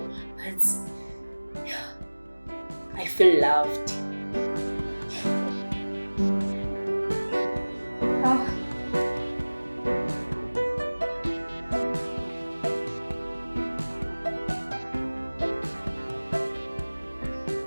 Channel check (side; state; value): both; inverted; correlation -1.00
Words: but yeah, I feel loved.